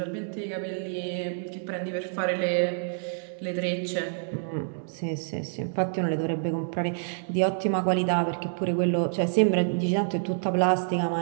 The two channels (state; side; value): silent; left; digital silence